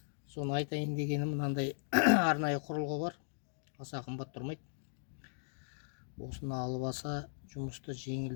Соны айтайын дегенім, мынандай арнайы құрылғы бар. Аса қымбат тұрмайды. Осыны алып алса жұмысты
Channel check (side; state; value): right; silent; digital silence